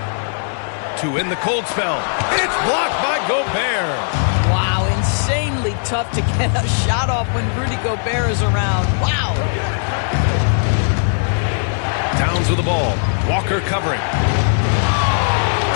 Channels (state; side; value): silent; right; 67 dB below the other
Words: To end the cold spell. It's blocked by Gobert. Wow, insanely tough to get a shot off when Rudy Gobert is around. Wow. Towns with the ball. Walker covering.